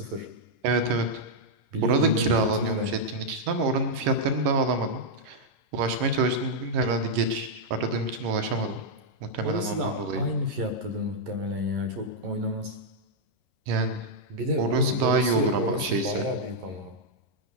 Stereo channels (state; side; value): late; left; 11 ms